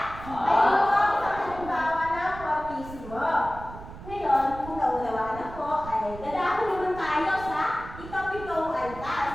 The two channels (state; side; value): noise; right; rumble, 14 dB below the sound